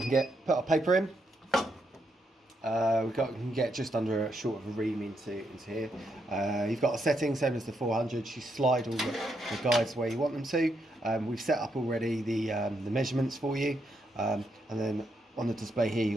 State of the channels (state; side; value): normal; both; correlation 0.79